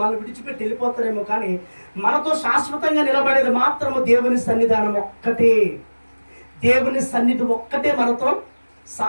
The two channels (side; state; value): both; inverted; correlation -1.00